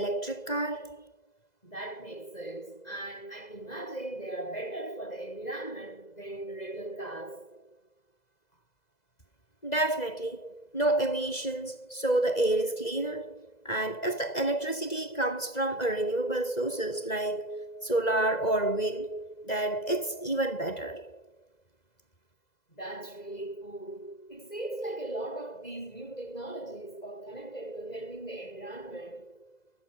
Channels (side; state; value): right; late; 2.0 ms